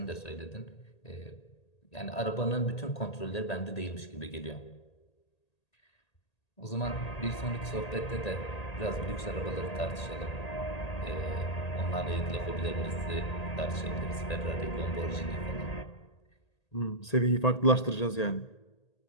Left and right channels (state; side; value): late; right; 1.8 ms